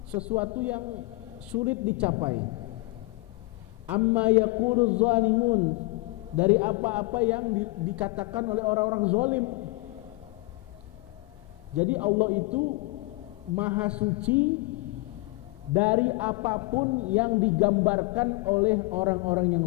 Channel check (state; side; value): quieter; right; 23.1 dB